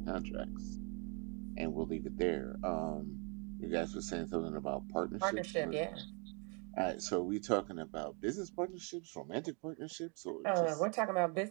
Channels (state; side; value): quieter; left; 35.4 dB